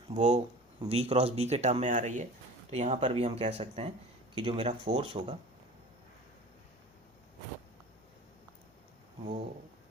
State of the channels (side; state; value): both; normal; correlation 0.39